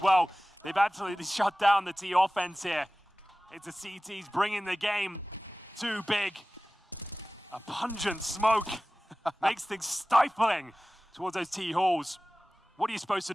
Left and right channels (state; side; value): normal; both; correlation 0.97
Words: well. They've absolutely shut down the T offense here. It's the CTs bringing the game too Big. A pungent smoke makes things stifling towards those T halls. What are you supposed to